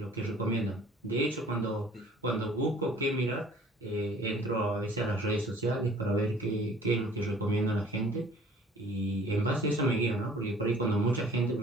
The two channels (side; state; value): both; normal; correlation 0.53